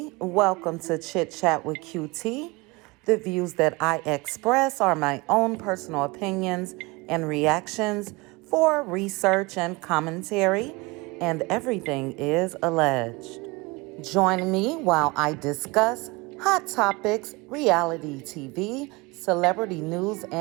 Welcome to Chit Chat with QT. The views that I express are my own personal opinions and reactions for research and commentary, and everything is alleged. Join me while I discuss hot topics, reality TV, celebrity news,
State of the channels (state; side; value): quieter; left; 24.6 dB